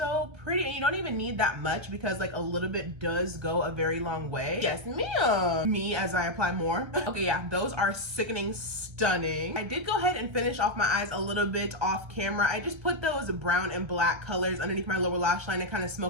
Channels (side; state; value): left; late; 1.3 ms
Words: pretty, and you don't even need that much because like a little bit does go a very long way. Yes, ma'am. Me as I apply more. Okay, yeah, those are sickening stunning. I did go ahead and finish off my eyes a little bit off camera. I just put those brown and black colors underneath my lower lash line and kind of